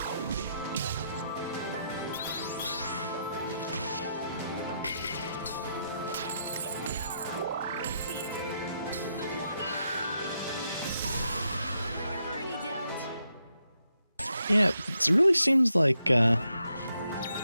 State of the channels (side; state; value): both; inverted; correlation -0.81